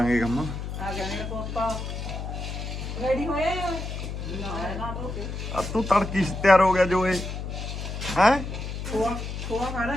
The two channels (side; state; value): left; noise; hum, 6 dB below the sound